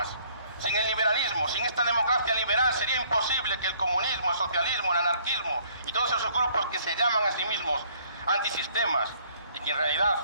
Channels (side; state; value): both; inverted; correlation -0.62